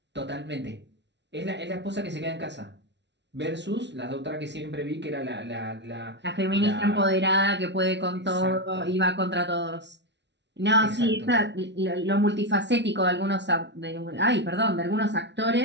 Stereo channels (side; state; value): left; late; 0.51 ms